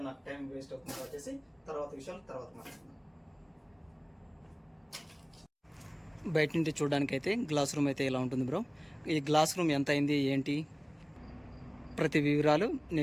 నాకు టైం వేస్ట్ అవుతుంది కాబట్టి తర్వాత విషయాలు తర్వాత మాట్లాడుతున్నాను. బయట నుండి చూడడానికి అయితే గ్లాస్ రూమ్ అయితే ఇలా ఉంటుంది బ్రో. ఈ గ్లాస్ రూమ్ ఎంత అయింది ఏంటి ప్రతి వివరాలు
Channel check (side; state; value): both; identical; correlation 1.00